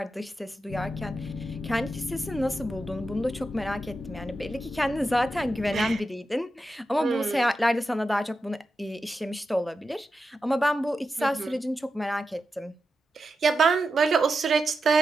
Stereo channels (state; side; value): normal; both; correlation 0.89